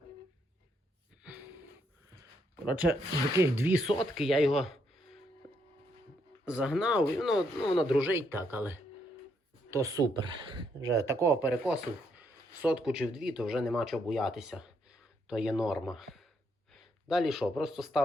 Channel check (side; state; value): both; normal; correlation 0.75